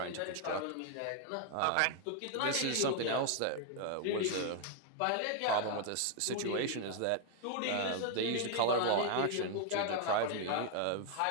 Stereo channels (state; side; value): different; both; correlation 0.00